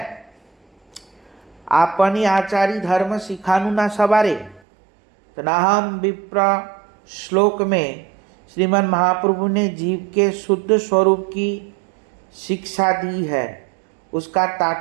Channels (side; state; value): left; drops out; at 4.6 s